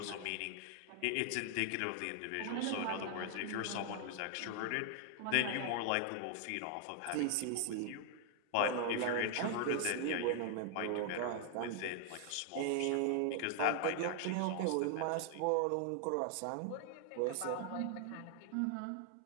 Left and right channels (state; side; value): different; both; correlation 0.00